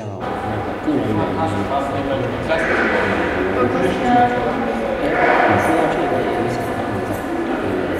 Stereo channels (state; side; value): identical; both; correlation 1.00